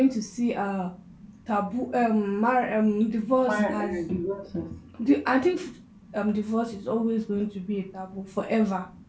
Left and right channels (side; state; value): both; identical; correlation 1.00